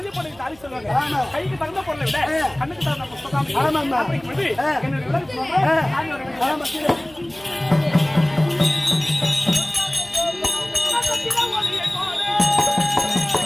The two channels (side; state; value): right; noise; hum, 25 dB below the sound